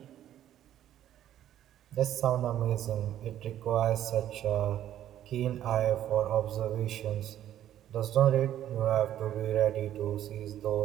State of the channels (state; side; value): quieter; left; 11.7 dB